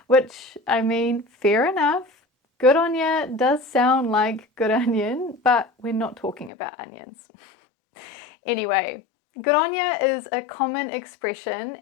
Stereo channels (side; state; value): right; drops out; at 6.5 s